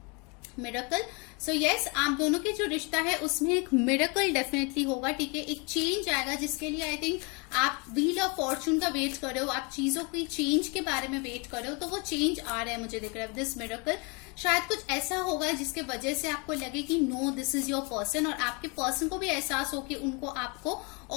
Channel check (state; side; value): quieter; right; 31.4 dB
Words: मिरेकल। सो यस, आप दोनों के जो रिश्ता है उसमें एक मिरेकल डेफिनेटली होगा, ठीक है। एक चेंज आएगा जिसके लिए आई थिंक आप व्हील ऑफ फॉर्चून का वेट कर रहे हो, आप चीजों की चेंज के बारे में वेट कर रहे हो, तो वो चेंज आ रहा है, मुझे दिख रहा है दिस मिरेकल। शायद कुछ ऐसा होगा जिसके वजह से आपको लगे कि no this is your person, और आपके पर्सन को भी एहसास हो कि उनको आपको